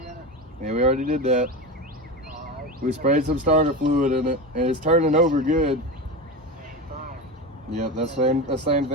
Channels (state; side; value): normal; both; correlation 0.22